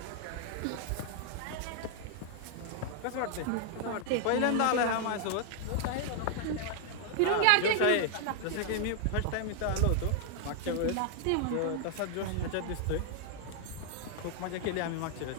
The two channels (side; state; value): both; different; correlation 0.00